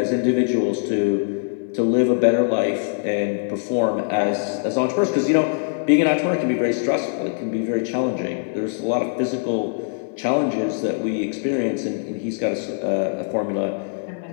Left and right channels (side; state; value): right; silent; 64 dB below the other